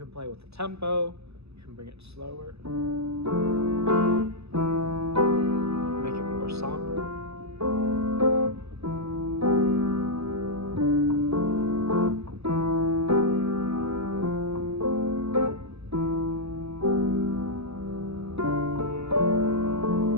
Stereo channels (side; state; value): left; late; 0.79 ms